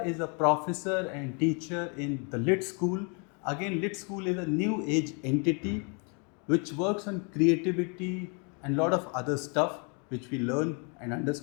is a professor and teacher in the Lit School. Again, Lit School is a new age entity which works on creativity and a lot of other stuff which we learn and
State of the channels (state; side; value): quieter; right; 36.0 dB